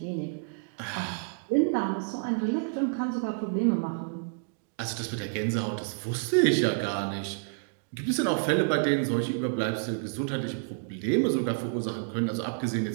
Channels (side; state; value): left; silent; digital silence